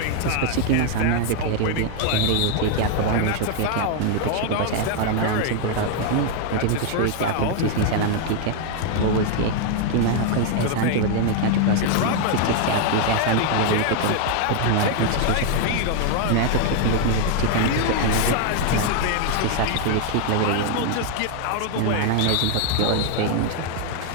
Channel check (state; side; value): different; both; correlation 0.00